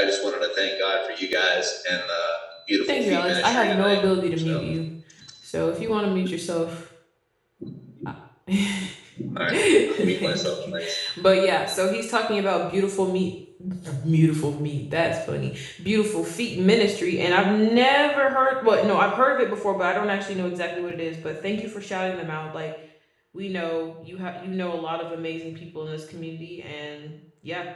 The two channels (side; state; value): both; identical; correlation 1.00